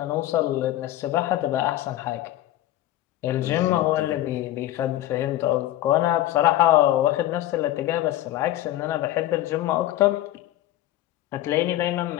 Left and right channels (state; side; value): quieter; right; 14.5 dB